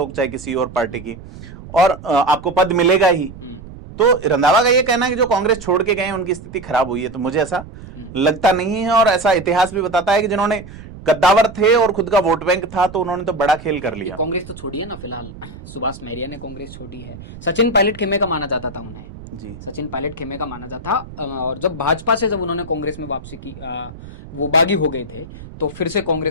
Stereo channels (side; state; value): right; noise; rumble, 15 dB below the sound